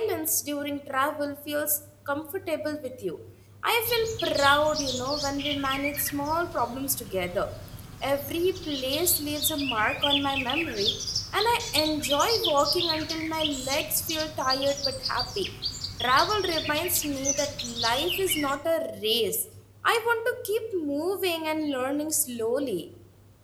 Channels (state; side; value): identical; both; correlation 1.00